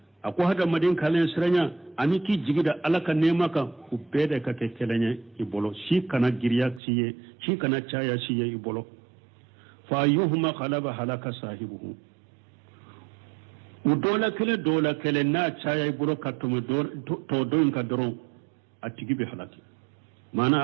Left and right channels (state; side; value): drops out; left; at 6.8 s